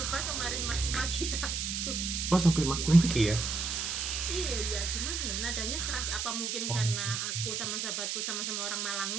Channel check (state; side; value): noise; right; hiss, 2 dB below the sound